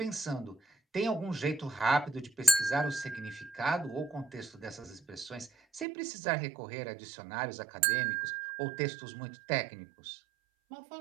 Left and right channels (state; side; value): drops out; left; at 5.9 s